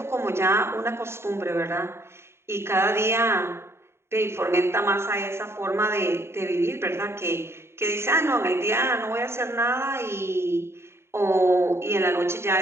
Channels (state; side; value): late; left; 0.12 ms